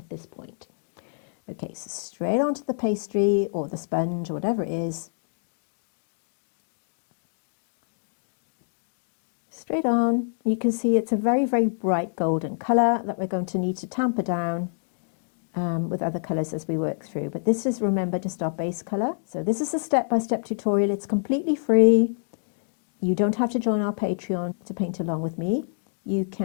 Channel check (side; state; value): right; silent; digital silence